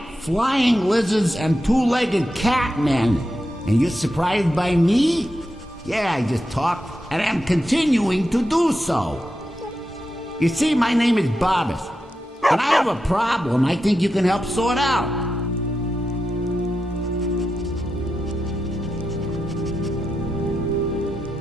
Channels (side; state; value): both; normal; correlation 0.88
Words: flying lizards and two-legged catmen. And you're surprised by me? Yeah, I just talked, and I'm continuing to do so. You see, my name is Barbas, and I have a problem I think you can help sort out.